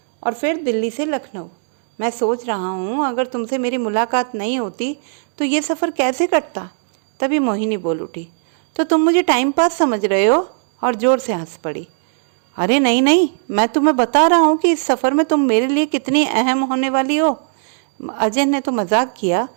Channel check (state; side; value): silent; left; 67 dB below the other